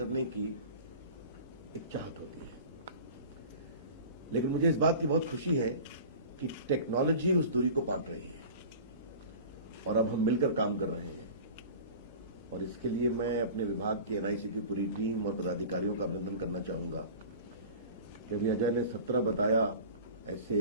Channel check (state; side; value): inverted; both; correlation -0.38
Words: की एक चाहत होती है। लेकिन मुझे इस बात की बहुत खुशी है कि टेक्नोलॉजी उस दूरी को पाट रही है और अब हम मिलकर काम कर रहे हैं, और इसके लिए मैं अपने विभाग के एनआईसी की पूरी टीम और पदाधिकारियों का अभिनंदन करना चाहूंगा कि अभी अजय ने 17 बताया